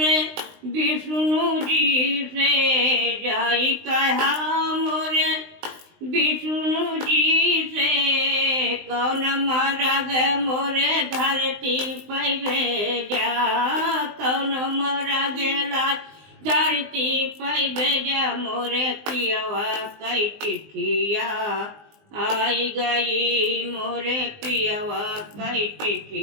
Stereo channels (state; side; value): late; left; 19 ms